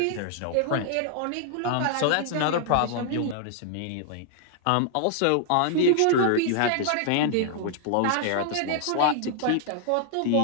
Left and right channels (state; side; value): different; both; correlation -0.01